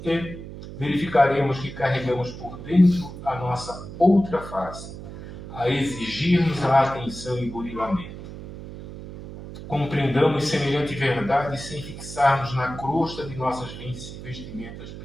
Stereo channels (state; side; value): noise; right; hum, 12 dB below the sound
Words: e verificaremos que carregamos por dentro a nossa outra face, a exigir-nos a atenção e burilamento. Compreendamos semelhante verdade sem fixarmos na crosta de nossas vestimentas